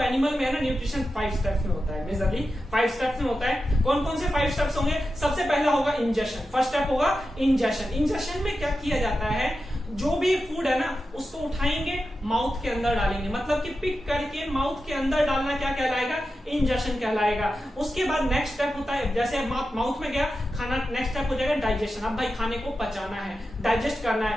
एनिमल में है ना न्यूट्रिशन 5 स्टेप्स में होता है, मेजरली 5 स्टेप्स में होता है। कौन कौन से 5 स्टेप्स होंगे? सबसे पहला होगा इंजेशन। फर्स्ट स्टेप होगा इंजेशन। इंजेशन में क्या किया जाता है, जो भी फूड है ना उसको उठाएंगे, माउथ के अंदर डालेंगे, मतलब कि पिक करके माउथ के अंदर डालना क्या कहलाएगा? इंजेशन कहलाएगा। उसके बाद नेक्स्ट स्टेप होता है, जैसे माउथ में गया खाना, नेक्स्ट स्टेप हो जाएगा डाइजेशन। अब भाई खाने को पचाना है, डाइजेस्ट करना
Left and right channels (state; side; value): normal; both; correlation 0.91